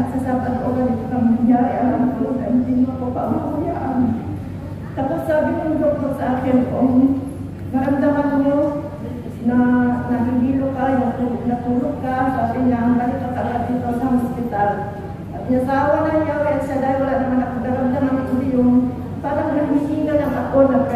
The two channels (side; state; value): both; identical; correlation 1.00